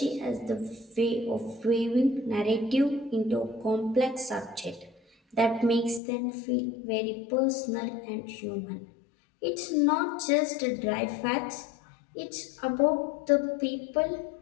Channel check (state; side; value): drops out; right; at 6.0 s